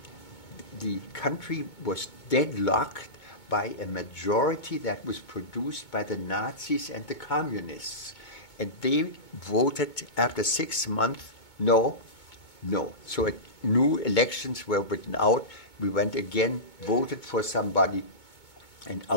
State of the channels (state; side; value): late; right; 2.2 ms